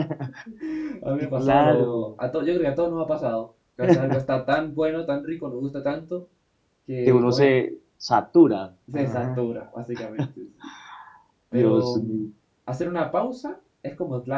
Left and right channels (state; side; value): identical; both; correlation 1.00